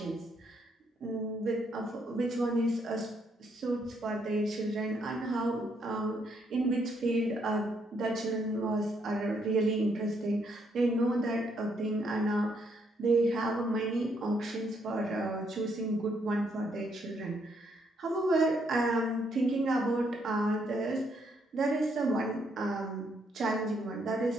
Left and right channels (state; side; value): normal; both; correlation 0.73